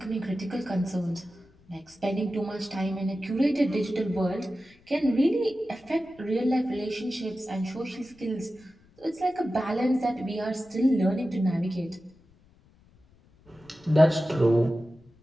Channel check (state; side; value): noise; left; rumble, 29 dB below the sound